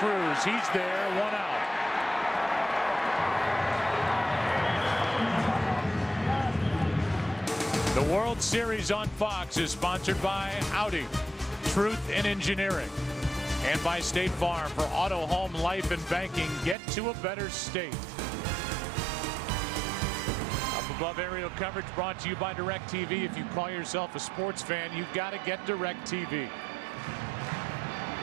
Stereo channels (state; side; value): drops out; left; at 16.8 s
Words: He's there, 1 out. The World Series on Fox is sponsored by Audi, Truth in Engineering, and by State Farm. For auto, home, life, and banking, get to a better state. Up above aerial coverage brought to you by DirecTV. If you call yourself a sports fan, you've got to get DirecTV.